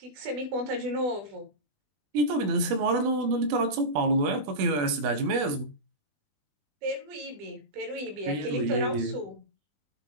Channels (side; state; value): left; late; 20 ms